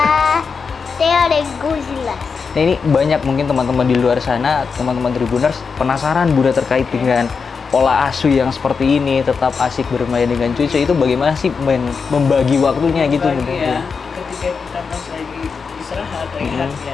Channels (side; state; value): right; quieter; 5.4 dB